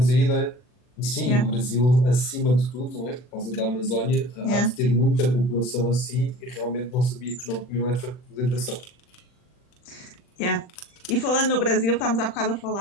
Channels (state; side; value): late; right; 40 ms